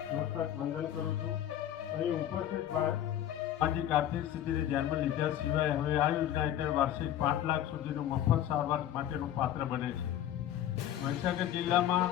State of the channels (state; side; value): quieter; right; 11.5 dB